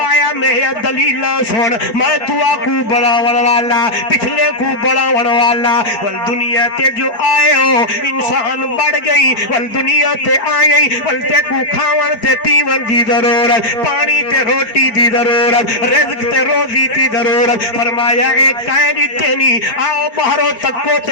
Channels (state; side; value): late; right; 4.5 ms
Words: میں دلیلہ سن میں دعا کو بڑھاون والا پچھلے کو بڑھاون والا والدنیا تے جو آئے ہو انسان بڑھ گئی والدنیا تے آئے والتے کو کھاون تے پیون دی ضرورت پانی تے روٹی دی ضرورت رزق تے روزی دی ضرورت فرمایا ایک کائنی تینی آؤ بہرو تکو